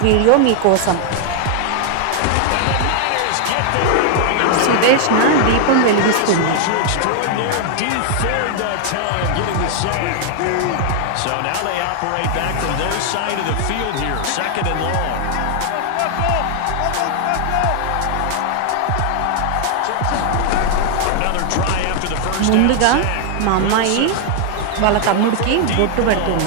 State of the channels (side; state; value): both; different; correlation 0.00